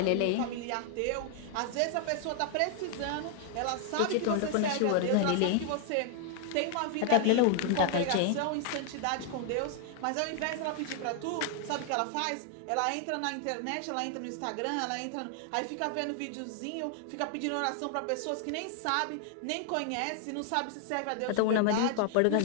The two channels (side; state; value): both; different; correlation 0.00